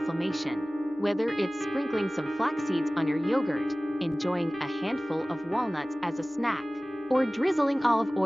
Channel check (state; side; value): normal; both; correlation 0.98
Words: Whether it's sprinkling some flax seeds on your yogurt, enjoying a handful of walnuts as a snack, or drizzling olive